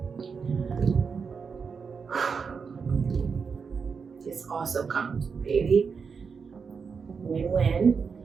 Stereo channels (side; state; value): left; quieter; 5.7 dB